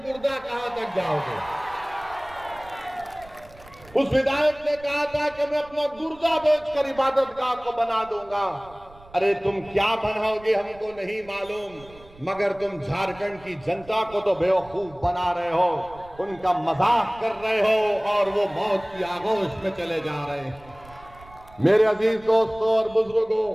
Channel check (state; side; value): noise; right; rumble, 23 dB below the sound